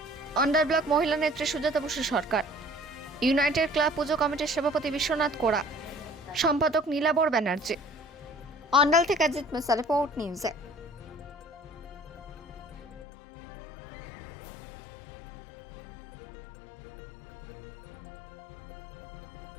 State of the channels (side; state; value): right; drops out; at 13.1 s